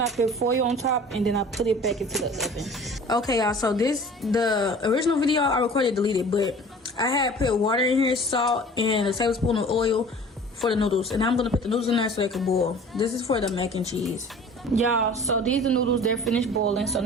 I put foil on top and then I put it back into the oven. Okay, y'all, so the original video I recorded deleted, but I had put water in here, salt, and a tablespoon of oil for the noodles. And I'm gonna put the noodles in there so they can boil. This is for the mac and cheese. Y'all, so these are the noodles, they're finished boiling. So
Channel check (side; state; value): both; normal; correlation 0.45